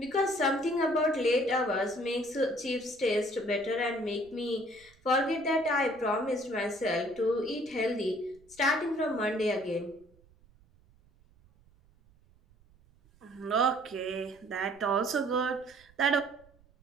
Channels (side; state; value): right; noise; rumble, 29 dB below the sound